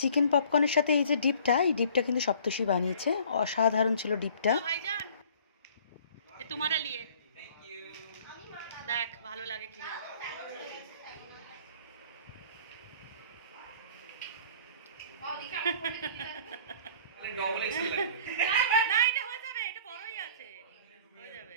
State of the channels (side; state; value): both; inverted; correlation -0.51